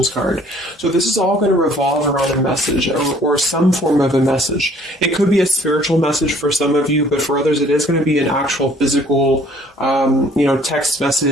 card. So this is all going to revolve around a message or some form of a message. It could be a spiritual message for some of you, but for others it is going to be an actual physical, text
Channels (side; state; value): both; normal; correlation 0.57